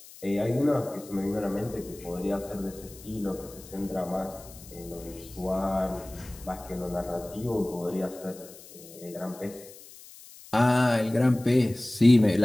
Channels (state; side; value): noise; left; hiss, 19 dB below the sound